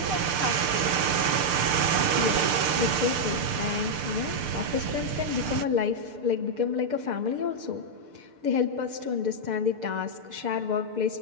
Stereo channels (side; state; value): left; late; 6.7 ms